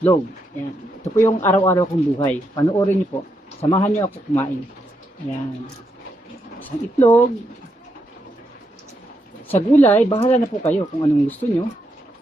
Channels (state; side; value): normal; both; correlation 0.81